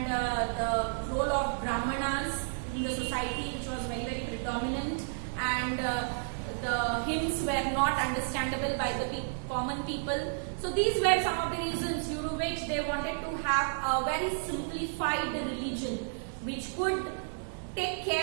the role of Brahmanas in the society, which was very, very predominant, and the hymns were not understandable by the common people. So these were some of the reasons due to which they wanted to have a very simplified religion which could take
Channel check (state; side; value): silent; left; digital silence